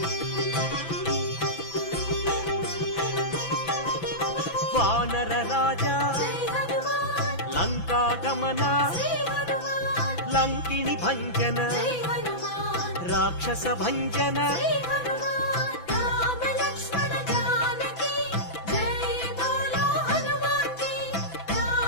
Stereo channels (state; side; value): late; right; 6.0 ms